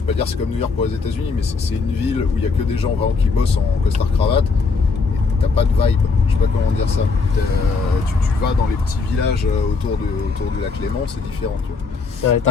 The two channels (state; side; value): quieter; right; 4.4 dB